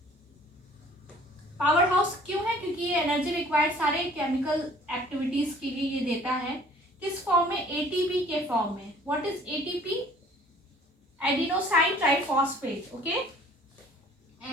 power house क्यों है? क्योंकि ये एनर्जी रिक्वायर्ड सारे केमिकल एक्टिविटीज के लिए ये देता है। किस फॉर्म में? एटीपी के फॉर्म में। What is ATP? Adenosine triphosphate, okay,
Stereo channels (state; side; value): normal; both; correlation 0.53